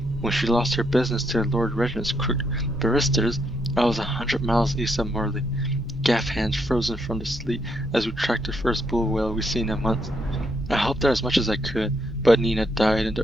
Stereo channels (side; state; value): both; normal; correlation 0.75